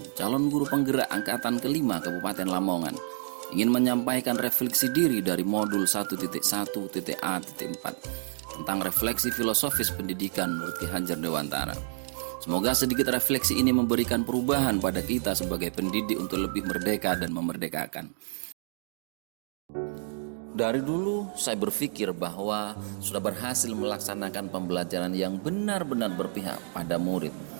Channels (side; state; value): left; silent; digital silence